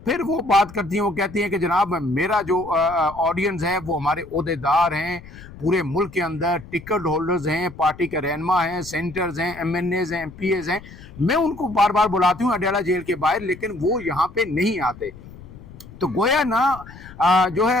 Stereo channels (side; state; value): left; noise; rumble, 17 dB below the sound